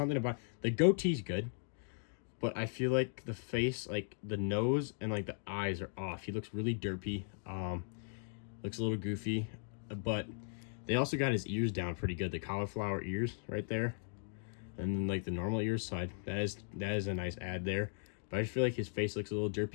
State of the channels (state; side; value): silent; right; digital silence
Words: about the goatee's good, but I feel like the face, like the nose and like the eyes are off. He looks really derpy. Looks a little goofy, but they also got his ears down pretty good. The cauliflower ears right there. And then like the normal ear side, that is a nice add there. But I just feel like his face looks a little